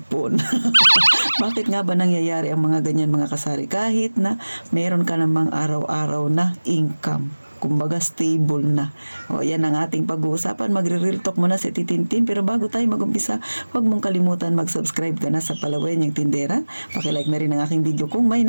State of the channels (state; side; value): inverted; both; correlation -1.00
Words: Bakit nga ba nangyayari ang mga ganyan mga kasari? Kahit na meron ka namang araw-araw na income. Kumbaga stable na. O yan ang ating pag-uusapan. Magre-real talk muna si Titintin. Pero bago tayo mag-umpisa, huwag mong kalimutan mag-subscribe ka na sa Palawen yung Tindera. Pakilike na rin ang aking video kung may